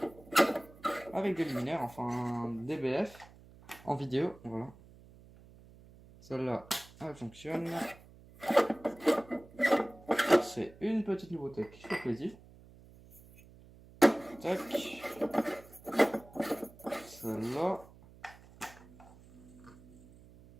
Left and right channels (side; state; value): right; noise; hum, 22 dB below the sound